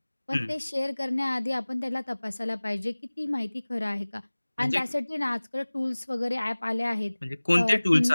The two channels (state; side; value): inverted; both; correlation -1.00